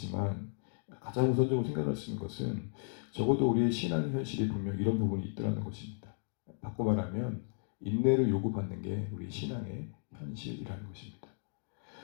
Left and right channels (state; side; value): silent; right; digital silence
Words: 가장 우선적으로 생각할 수 있는 것은 적어도 우리의 신앙 현실이 분명 이런 부분이 있더라는 것입니다. 바꿔 말하면 인내를 요구받는 게 우리 신앙의 현실이라는 것입니다.